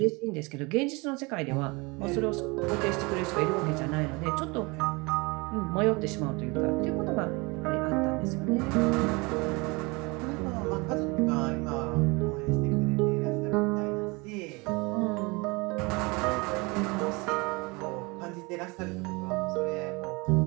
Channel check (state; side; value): quieter; left; 26.7 dB